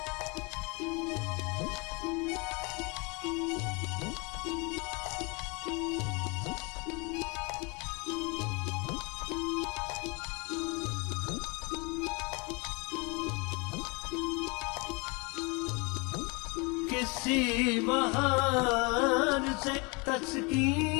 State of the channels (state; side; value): quieter; right; 29.4 dB